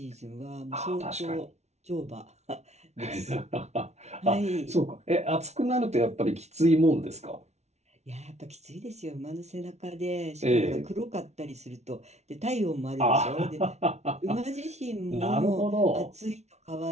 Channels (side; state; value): left; late; 0.32 ms